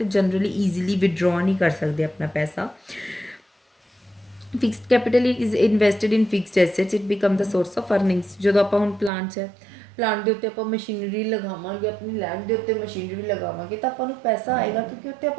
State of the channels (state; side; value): drops out; left; at 9.1 s